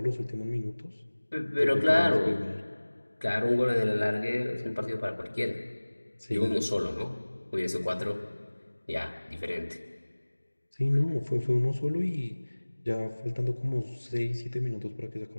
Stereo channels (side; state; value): both; inverted; correlation -1.00